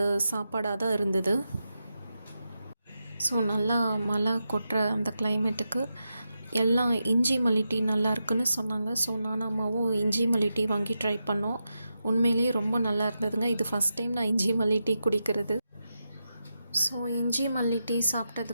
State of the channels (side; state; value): both; inverted; correlation -0.88